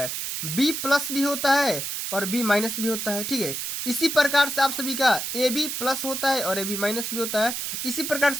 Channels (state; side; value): noise; right; hiss, 3 dB below the sound